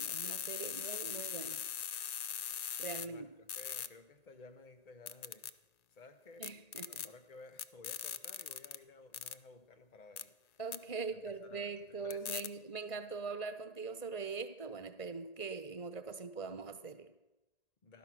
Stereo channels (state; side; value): late; right; 1.9 ms